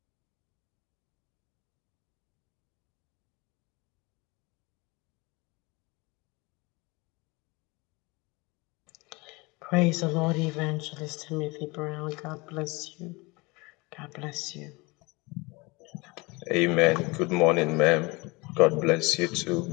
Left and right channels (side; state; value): right; quieter; 25.4 dB